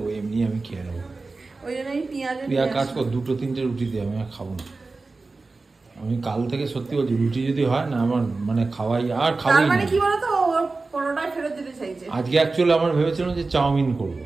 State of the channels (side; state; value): left; quieter; 3.7 dB